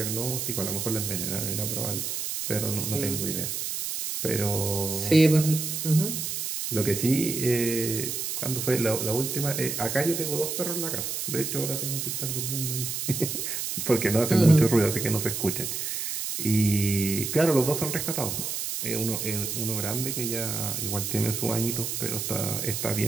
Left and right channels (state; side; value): noise; right; hiss, 3 dB below the sound